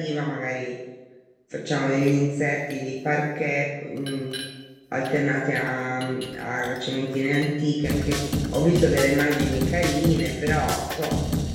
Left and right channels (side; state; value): both; identical; correlation 1.00